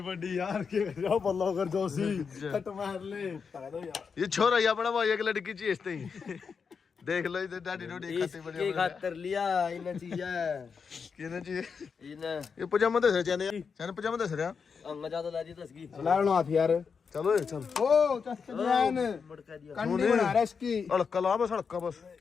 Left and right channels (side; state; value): right; quieter; 5.8 dB